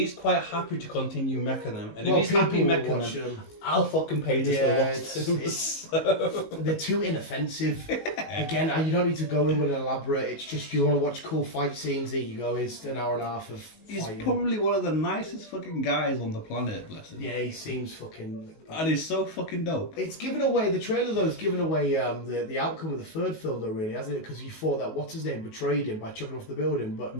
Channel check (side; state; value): right; late; 19 ms